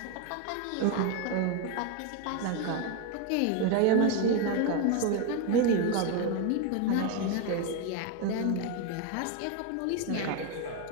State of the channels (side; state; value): both; different; correlation 0.02